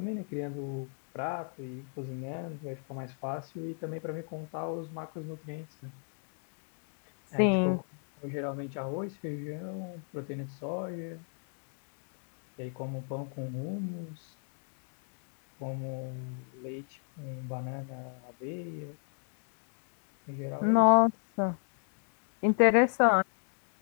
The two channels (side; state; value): right; silent; 55 dB below the other